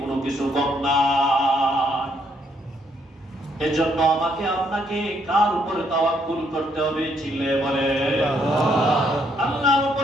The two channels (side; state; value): both; normal; correlation 0.72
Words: কিছু কম নাই। এজন্য আমাকে আপনাকে কার উপরে তাওয়াক্কুল করতে হবে? চিল্লায়ে বলে আল্লাহর